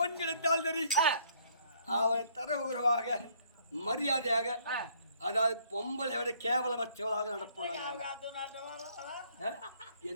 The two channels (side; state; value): both; inverted; correlation -0.64